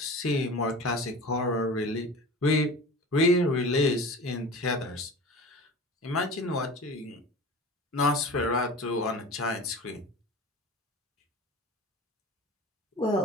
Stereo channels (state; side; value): normal; both; correlation 0.36